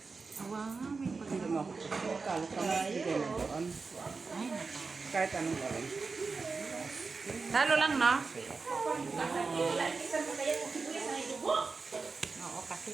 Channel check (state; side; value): quieter; left; 4.4 dB